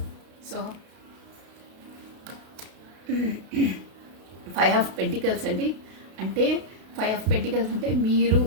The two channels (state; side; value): late; left; 32 ms